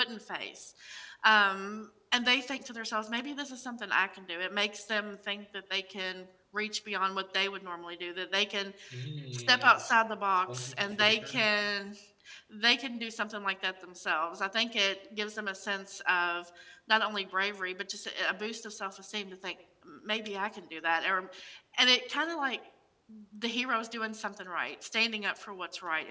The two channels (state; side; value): identical; both; correlation 1.00